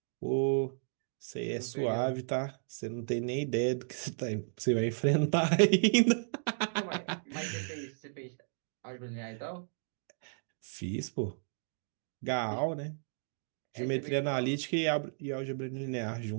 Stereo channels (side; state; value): left; silent; digital silence